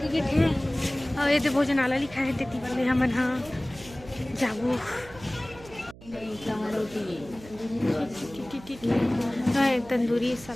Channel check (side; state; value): right; noise; hum, 19 dB below the sound